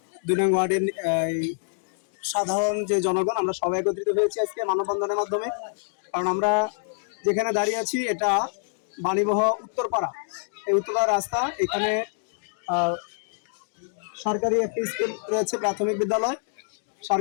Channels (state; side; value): silent; right; digital silence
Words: ২ নং ওয়ার্ডের সাধারণ যে জনগণ আমরা সবাই একত্রিত হয়েছি আজকে মানববন্ধনের মাধ্যমে। কারণ আমরা যেখানে দাঁড়িয়ে আছি এটা বাণীবহ উত্তরপাড়া। এই উত্তরপাড়া রাস্তা, এখানে সরকারি একটি স্কুল রয়েছে, প্রাথমিক বিদ্যালয়।